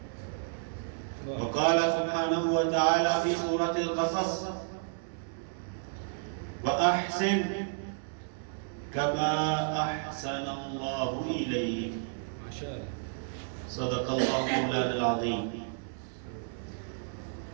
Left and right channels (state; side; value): silent; left; 57 dB below the other